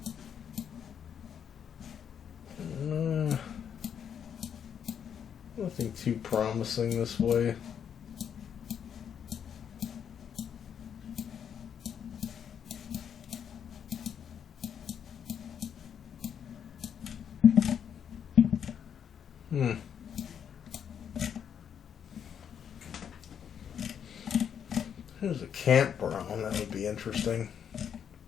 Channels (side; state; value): right; quieter; 8.2 dB